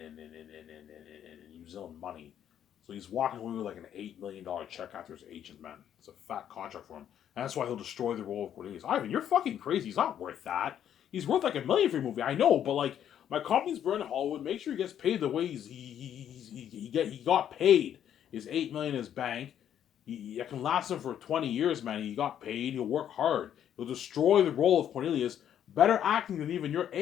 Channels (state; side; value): quieter; right; 9.9 dB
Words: New Zealand money. So he's walking away with like an $8 million check after his agent, man. It's a fat contract for him. And that's why he'll destroy the role of Cornelius. Ivan, you're fucking crazy. He's not worth that. He's worth like $1 million for your movie. I know, but like my company's burning Hollywood. Make sure he gets paid the way he got paid. His $8 million in his bank. He can last him for 20 years, man. He got paid. He'll work hard. He'll destroy the role of Cornelius. Better acting than even your